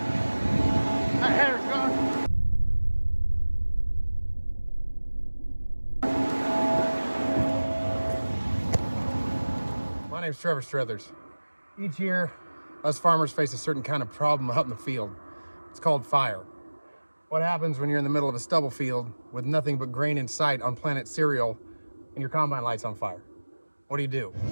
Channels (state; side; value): inverted; both; correlation -1.00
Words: That header's gone. My name's Trevor Struthers. Each year, us farmers face a certain kind of problem out in the field. It's called fire. What happens when you're in the middle of a stubble field with nothing but grain in sight on planet cereal and your combine light's on fire? What do?